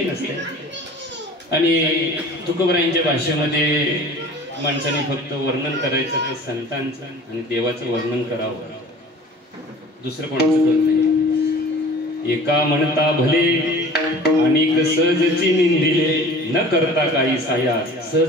नसते आणि तुकोबरायांच्या भाषेमध्ये माणसाने फक्त वर्णन करायचं तर संतांचं आणि देवाचं वर्णन करावं, दुसरं कोणाचं करत नाही. एका म्हणता भले अनेक सहजची निंदिले, न करता काही साया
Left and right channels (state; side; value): normal; both; correlation 0.44